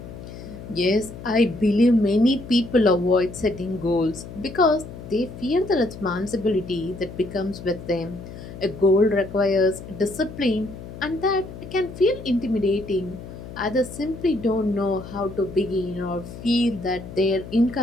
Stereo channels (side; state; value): left; noise; hum, 13 dB below the sound